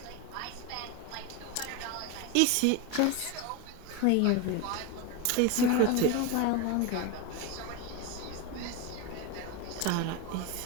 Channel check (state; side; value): different; both; correlation 0.03